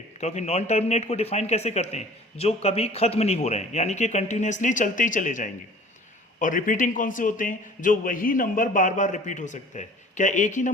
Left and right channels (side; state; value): both; normal; correlation 0.47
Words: क्योंकि नॉन टर्मिनेट को डिफाइन कैसे करते हैं? जो कभी खत्म नहीं हो रहे हैं, यानी कि कंटिन्यूसली चलते ही चले जाएंगे। और रिपीटिंग कौन से होते हैं? जो वही नंबर बार बार रिपीट हो सकता है। क्या एक ही